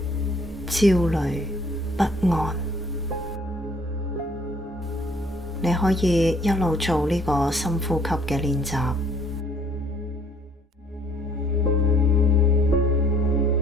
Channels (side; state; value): both; normal; correlation 0.60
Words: 焦慮、不安。你可以一路做呢個深呼吸嘅練習。